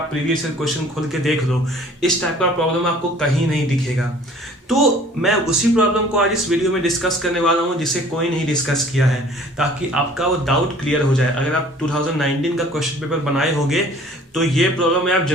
प्रीवियस क्वेश्चन खोल के देख लो, इस टाइप का प्रॉब्लम आपको कहीं नहीं दिखेगा। तो मैं उसी प्रॉब्लम को आज इस वीडियो में डिस्कस करने वाला हूँ जिसे कोई नहीं डिस्कस किया है, ताकि आपका वो डाउट क्लियर हो जाए। अगर आप 2019 का क्वेश्चन पेपर बनाए होंगे तो ये प्रॉब्लम में आप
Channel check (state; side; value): normal; both; correlation 0.52